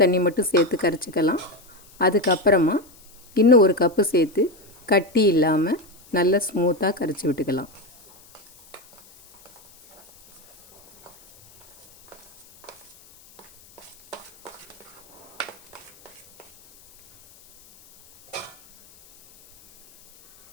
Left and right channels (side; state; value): left; noise; hiss, 26 dB below the sound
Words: மட்டும் சேர்த்து கரைச்சிக்கலாம். அதுக்கப்புறமா இன்னும் ஒரு கப்பு சேர்த்து கட்டி இல்லாமல் நல்லா ஸ்மூத்தாக கரைச்சி விட்டுக்கலாம்.